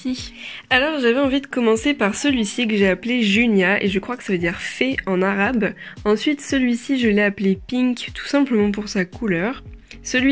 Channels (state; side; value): identical; both; correlation 1.00